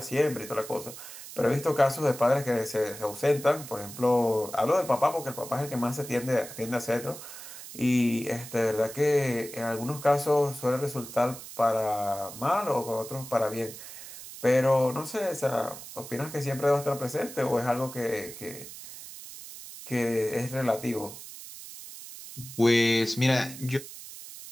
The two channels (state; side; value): noise; right; hiss, 13 dB below the sound